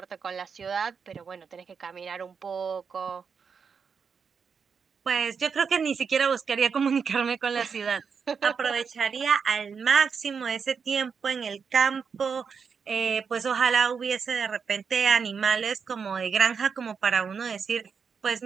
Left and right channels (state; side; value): quieter; left; 6.1 dB